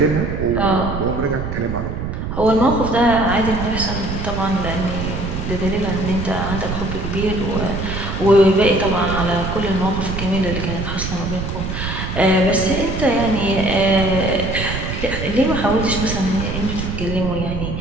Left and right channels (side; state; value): right; noise; rumble, 4 dB below the sound